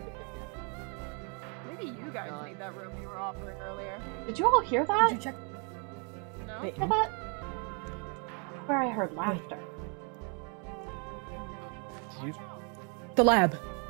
Maybe you guys need that room you were offering earlier. Did you all hear that? Did you check? No? Hear that? Where I heard laughter. The lab.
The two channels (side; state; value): left; quieter; 36.4 dB